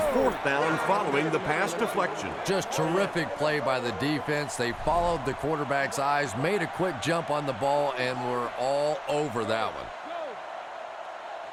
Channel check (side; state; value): both; identical; correlation 1.00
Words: down following the pass deflection. Just terrific play by the defense. They followed the quarterback's eyes, made a quick jump on the ball, and were all over that one.